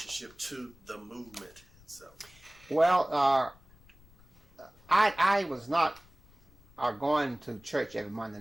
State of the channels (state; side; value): noise; left; rumble, 26 dB below the sound